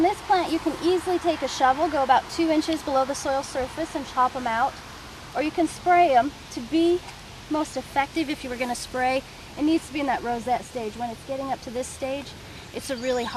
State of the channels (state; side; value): identical; both; correlation 1.00